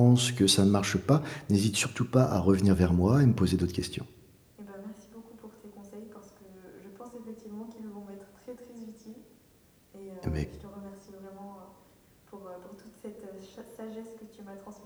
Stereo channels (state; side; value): identical; both; correlation 1.00